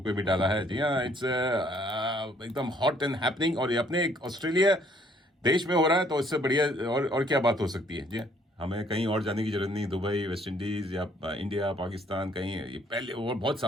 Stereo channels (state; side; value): normal; both; correlation 0.63